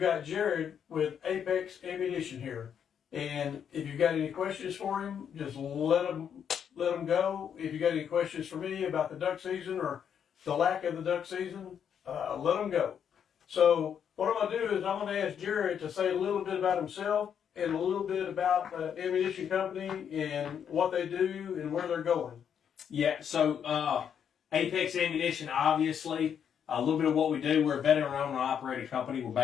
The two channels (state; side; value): quieter; right; 8.2 dB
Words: got Jared with Apex Ammunition here, and if you've got any questions for him, just let him go. If you got any questions for me about the duck season or the lack of the duck season, let them go. So what I'm going to do is I'm going to ask Jared to say a little bit about himself and a little bit about the ammunition company and what they do and where they're going. Yeah, so Apex Ammunition, obviously, a little bit of what we do. We're a veteran-owned and operated company. We're